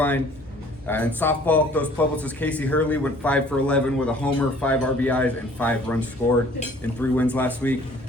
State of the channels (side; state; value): both; normal; correlation 0.54